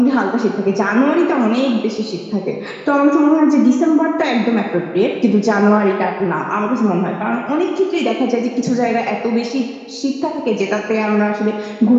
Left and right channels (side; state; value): both; identical; correlation 1.00